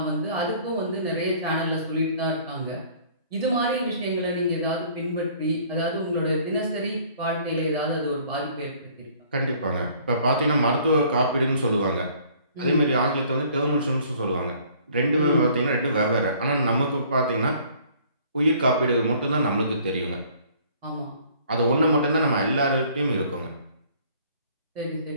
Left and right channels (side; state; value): both; inverted; correlation -0.56